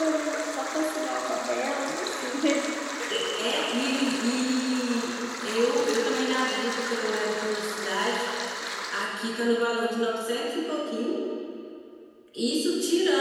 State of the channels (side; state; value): both; identical; correlation 1.00